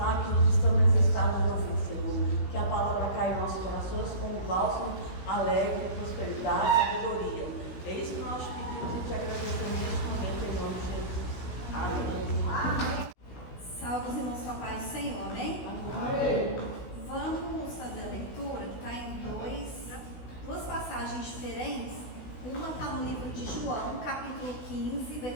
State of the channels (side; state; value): right; late; 16 ms